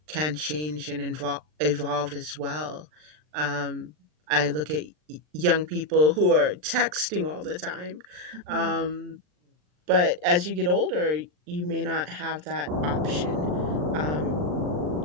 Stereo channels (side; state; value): left; late; 39 ms